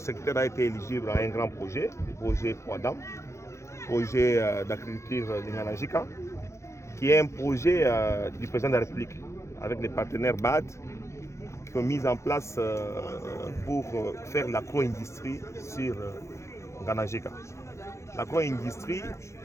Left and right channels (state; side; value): late; right; 0.14 ms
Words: a été éligible à un grand projet, le projet Kwadam, projet d'agriculture de Gandanjika, qui est un projet du président de la République, avec les partenaires BAD, qui ont mis en place pour faire l'agro-industrie sur Gandanjika. L'agro-industrie,